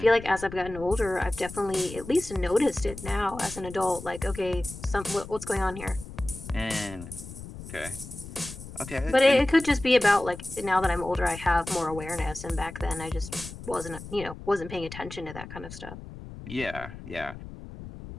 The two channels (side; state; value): left; noise; rumble, 13 dB below the sound